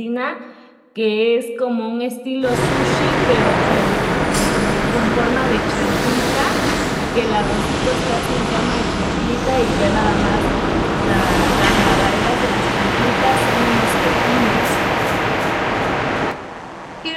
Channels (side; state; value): both; identical; correlation 1.00